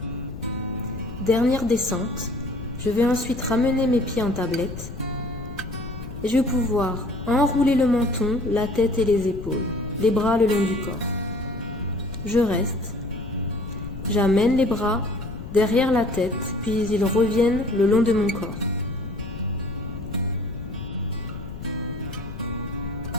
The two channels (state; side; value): noise; left; rumble, 11 dB below the sound